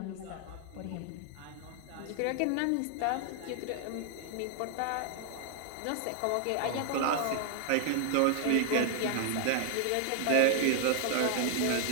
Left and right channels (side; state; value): both; different; correlation 0.00